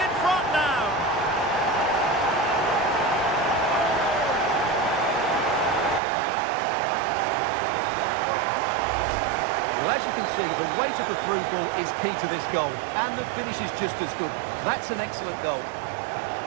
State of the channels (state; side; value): drops out; left; at 6.0 s